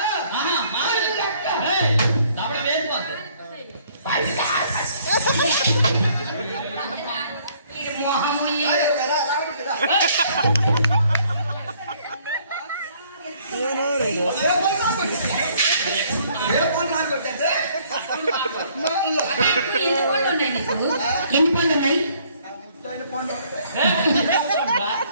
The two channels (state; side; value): inverted; both; correlation -0.62